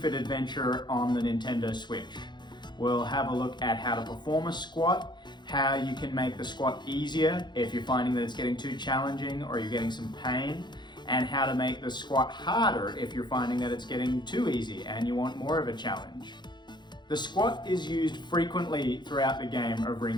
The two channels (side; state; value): right; late; 0.21 ms